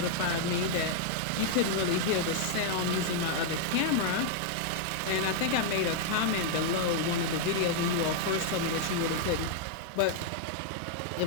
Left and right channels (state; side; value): different; both; correlation -0.01